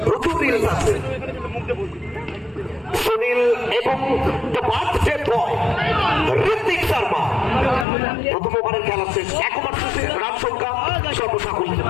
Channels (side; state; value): right; drops out; at 7.9 s